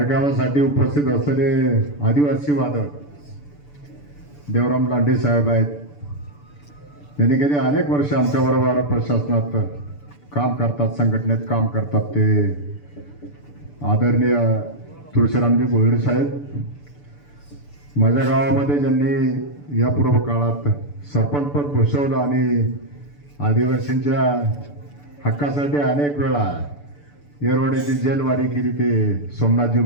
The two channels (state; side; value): late; right; 6.9 ms